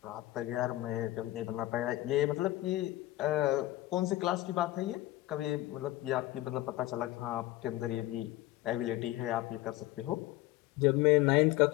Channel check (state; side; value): quieter; right; 16.9 dB